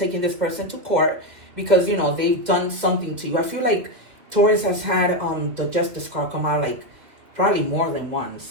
this person to court because, they've done something to you. I feel like Taurus has had the Justice card come out like probably more than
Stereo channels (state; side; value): late; left; 2.2 ms